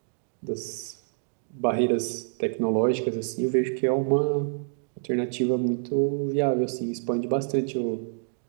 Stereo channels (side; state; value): left; silent; digital silence